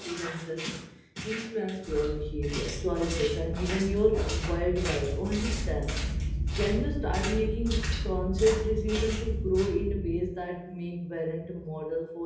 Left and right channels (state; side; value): identical; both; correlation 1.00